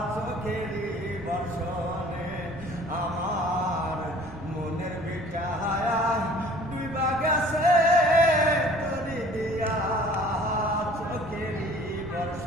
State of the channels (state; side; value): noise; right; rumble, 17 dB below the sound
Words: চোখেরই বর্ষণে। আমার মনের বিটায়া ডিবা গেছে তরি দিয়া চোখেরই